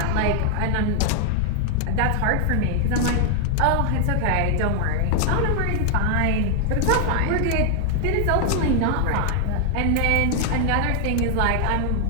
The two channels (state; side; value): different; both; correlation 0.00